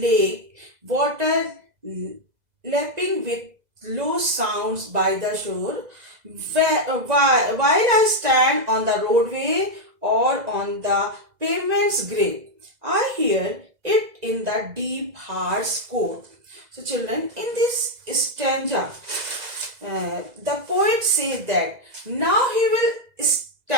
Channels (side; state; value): left; late; 2.0 ms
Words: water lapping with low sounds by the shore. While I stand on the roadway or on the pavement's grave, I hear it in the deep heart's core. So children, in this stanza, the poet says that now he will